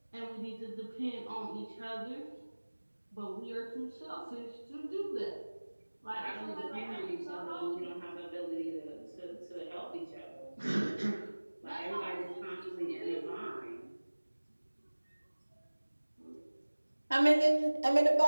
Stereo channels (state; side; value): inverted; both; correlation -1.00